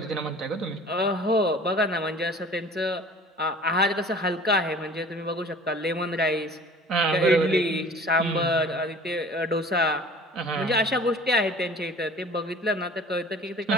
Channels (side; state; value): both; normal; correlation 0.46